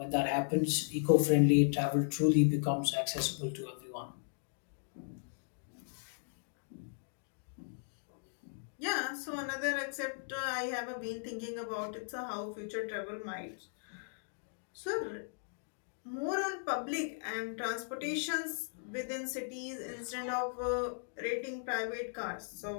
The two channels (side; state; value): right; silent; digital silence